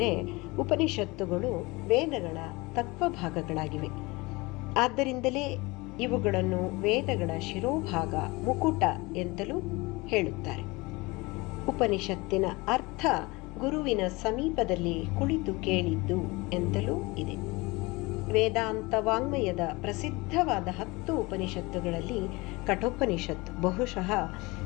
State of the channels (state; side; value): quieter; right; 23.8 dB